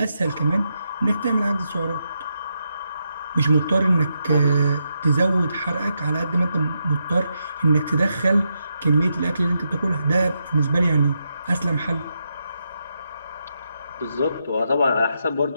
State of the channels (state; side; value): inverted; both; correlation -0.83